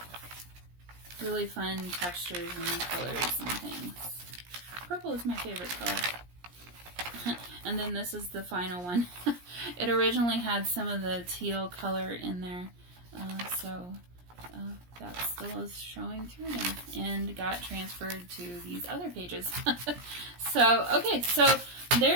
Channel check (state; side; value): late; left; 17 ms